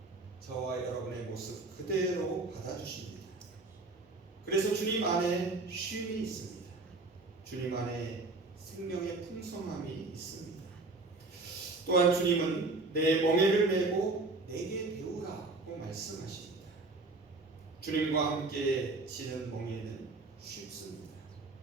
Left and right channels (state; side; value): quieter; left; 3.4 dB